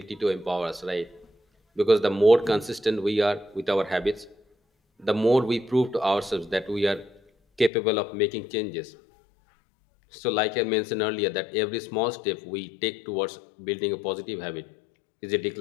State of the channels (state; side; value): drops out; right; at 7.7 s